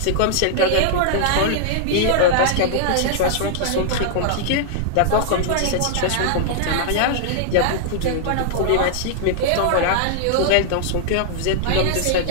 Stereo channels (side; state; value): both; different; correlation -0.01